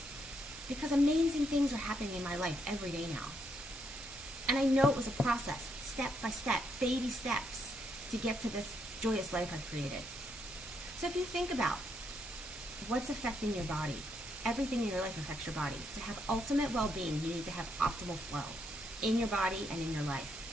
Because amazing things are happening in my life every day now. And I know it was a process, step by step, baby steps, to get to this joyous life I've created. So if you think about what's affecting your body, everything in your life affects your body. To have ultimate well-being, you need to have optimal flow in your body and in your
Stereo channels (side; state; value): both; normal; correlation 0.76